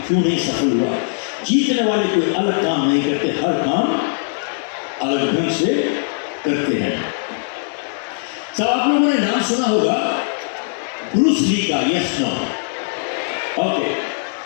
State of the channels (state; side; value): silent; right; digital silence